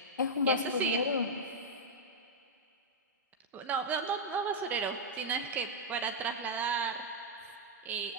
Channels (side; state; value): both; normal; correlation -0.05